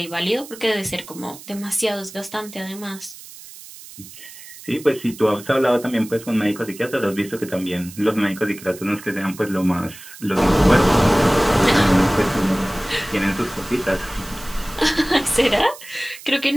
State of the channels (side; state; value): right; noise; hiss, 17 dB below the sound